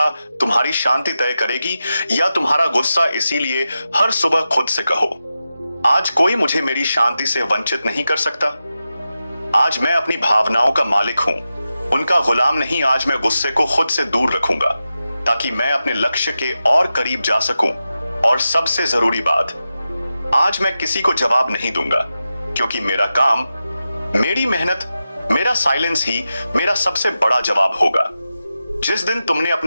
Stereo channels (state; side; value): inverted; both; correlation -0.92